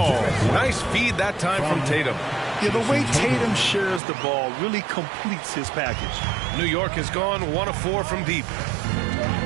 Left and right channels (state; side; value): drops out; left; at 4.0 s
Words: Nice feed that time from Tatum. Yeah, the way Tatum shares the ball really completes his package. New York has gone 1 of 4 from deep.